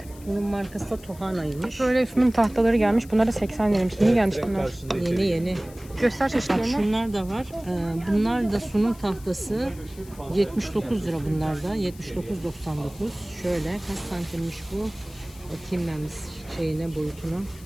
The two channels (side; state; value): left; noise; hiss, 22 dB below the sound